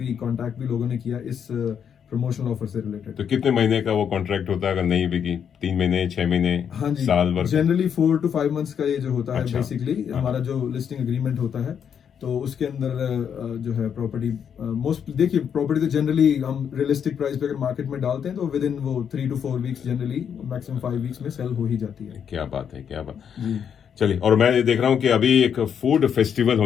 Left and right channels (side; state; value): right; quieter; 7.9 dB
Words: कांटेक्ट भी लोगों ने किया इस प्रमोशनल ऑफर से रिलेटेड। तो कितने महीने का वो कॉन्ट्रैक्ट होता है अगर नहीं बिकी? 3 महीने, 6 महीने, हाँ जी, साल भर? जनरली 4 to 5 मंथ्स का ये जो होता है। अच्छा। बेसिकली हमारा जो लिस्टिंग एग्रीमेंट होता है, तो उसके अंदर जो है प्रॉपर्टी मोस्ट, देखिए प्रॉपर्टी तो जनरली हम रियलिस्टिक प्राइस पे अगर मार्केट में डालते हैं तो विद इन वो 3 to 4 weeks, generally maximum 5 weeks में सेल हो ही जाती है। क्या बात है, क्या बात। चलिए, और मैं ये देख रहा हूँ कि अभी एक फूड फेस्टिवल